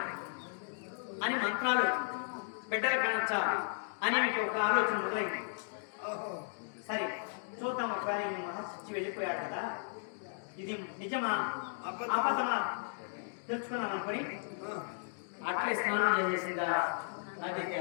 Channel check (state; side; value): silent; right; digital silence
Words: అని, మంత్రాలు బిడ్డలు కనొచ్చా అని మీకు ఒక ఆలోచన మొదలైంది. సరే చూద్దాం, ఒకవేళ మహర్షి వెళ్ళిపోయాడు కదా, ఇది నిజమా అబద్ధమా తెలుసుకున్నాను అనుకుని అట్లే స్నానం చేసేసిందా నది